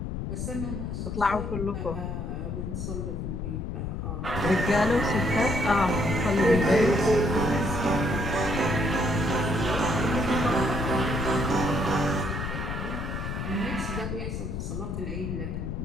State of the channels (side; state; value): left; noise; rumble, 4 dB below the sound